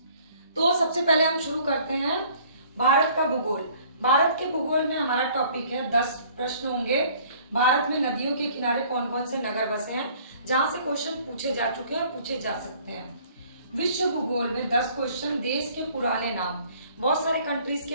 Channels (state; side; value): inverted; both; correlation -0.56